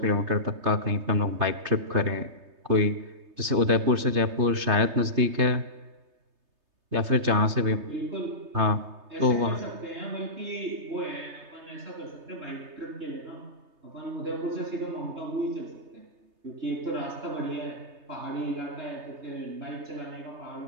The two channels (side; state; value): left; late; 3.3 ms